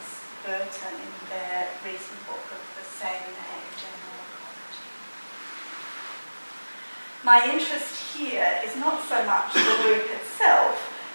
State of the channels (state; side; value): inverted; both; correlation -1.00